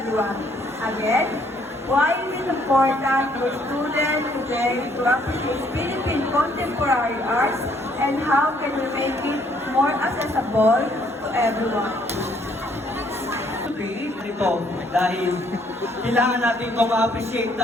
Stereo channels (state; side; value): normal; both; correlation 0.66